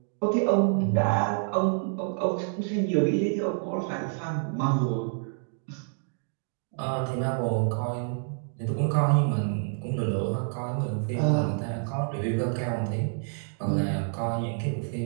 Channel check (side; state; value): left; silent; 59 dB below the other